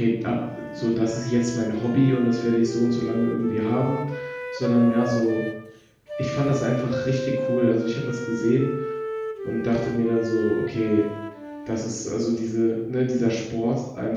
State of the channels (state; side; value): identical; both; correlation 1.00